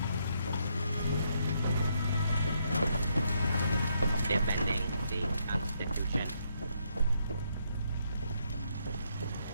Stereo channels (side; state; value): both; inverted; correlation -0.75